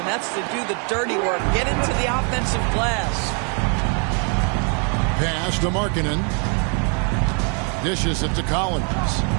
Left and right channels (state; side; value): quieter; left; 39.4 dB